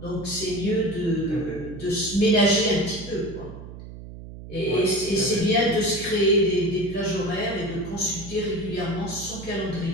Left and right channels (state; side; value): noise; right; hum, 13 dB below the sound